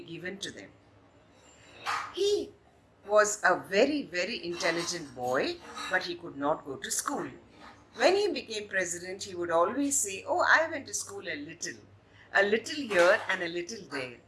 given to them. He was a very, very intelligent boy, but he could not go to school. When he became president, he would always say, "Oh, I went to school a little here and a little there,"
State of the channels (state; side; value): identical; both; correlation 1.00